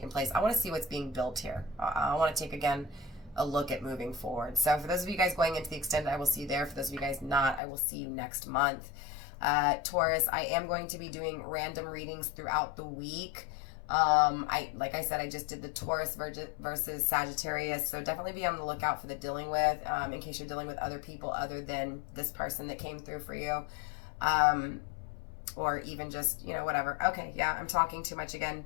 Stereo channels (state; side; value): drops out; right; at 7.6 s